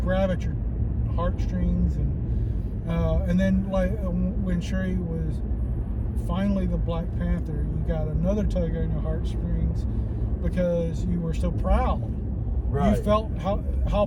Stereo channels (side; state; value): both; identical; correlation 1.00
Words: grab at your heartstrings, and then like when Shuri was finally the Black Panther, you got another tug on your heartstrings because you were so proud. Right. You felt how